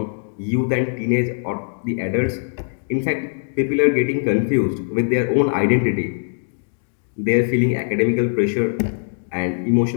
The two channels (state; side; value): silent; right; digital silence